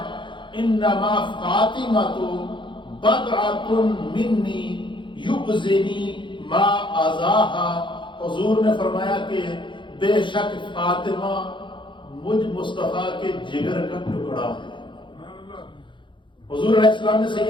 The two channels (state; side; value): late; right; 0.23 ms